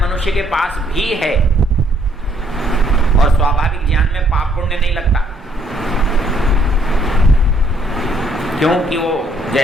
मनुष्य के पास भी है, और स्वाभाविक ज्ञान में पाप पुण्य नहीं लगता, क्योंकि वो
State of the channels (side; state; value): both; normal; correlation 0.67